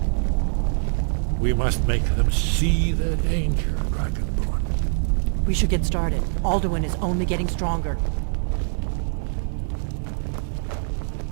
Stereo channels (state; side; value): silent; left; digital silence